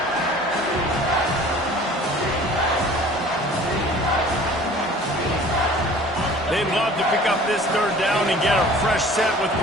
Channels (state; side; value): normal; both; correlation 0.47